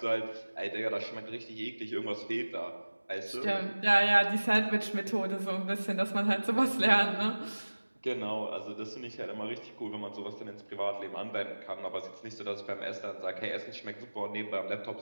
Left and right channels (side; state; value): both; inverted; correlation -1.00